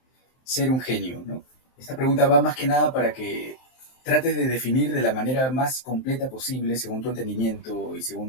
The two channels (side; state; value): right; late; 23 ms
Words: ser un genio? ¿No? Esta pregunta va más que nada para que trates de definir de la manera más completa posible, según tu entendimiento y